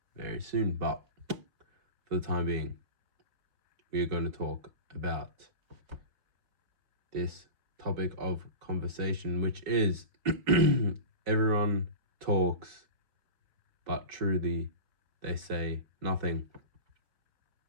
very soon, but for the time being, we are going to talk about this topic of conversation, which is everyone talks, but truly they say nothing.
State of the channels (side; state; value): left; late; 4.7 ms